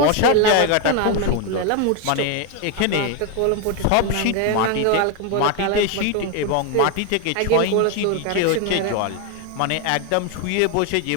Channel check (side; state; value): both; different; correlation 0.01